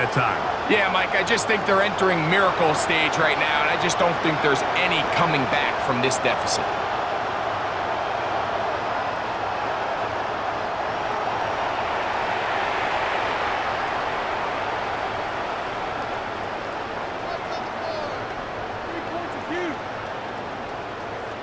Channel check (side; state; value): both; identical; correlation 1.00